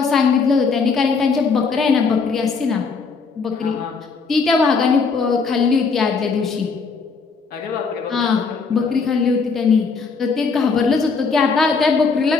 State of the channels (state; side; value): quieter; right; 4.9 dB